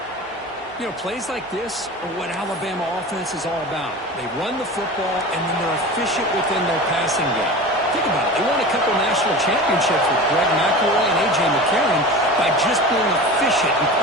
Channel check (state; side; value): normal; both; correlation 0.33